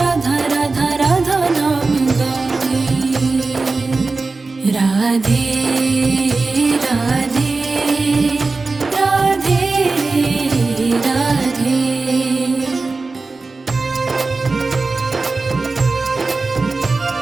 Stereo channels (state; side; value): quieter; left; 3.8 dB